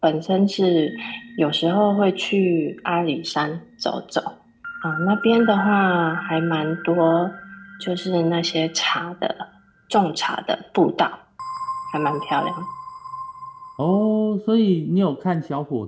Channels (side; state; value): both; identical; correlation 1.00